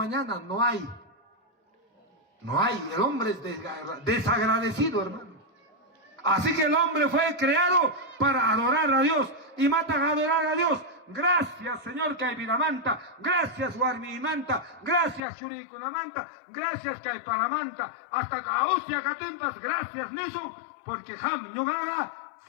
no hay. No hay, el hombre es desagradecido, hermano. Así que el hombre fue creado para adorar a Dios, y matan a adorar a Dios. Gracias, Señor, Kaiviramanta. Gracias, Warmimanta. Gracias, Shurikunamanta. Gracias, Kaiparamanta. Hasta Kausia Katimpas. Gracias, Nisun. Porque Ham Yugaga,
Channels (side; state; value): right; drops out; at 15.2 s